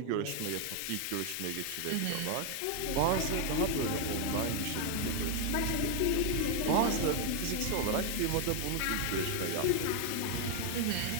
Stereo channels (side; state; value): both; different; correlation 0.00